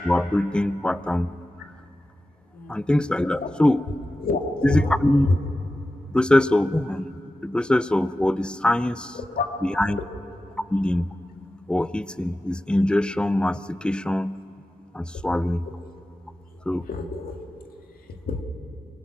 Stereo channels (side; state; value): both; normal; correlation 0.93